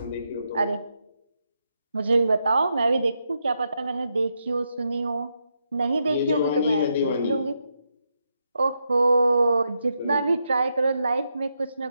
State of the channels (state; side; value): inverted; both; correlation -0.82